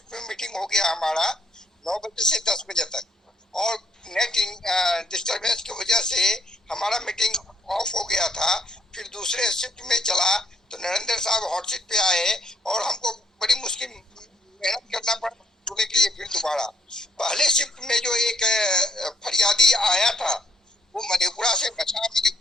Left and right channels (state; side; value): normal; both; correlation 0.72